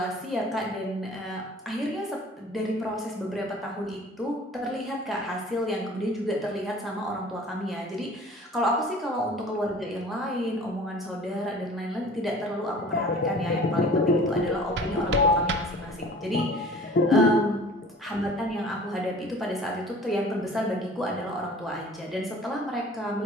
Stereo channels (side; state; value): both; normal; correlation 0.46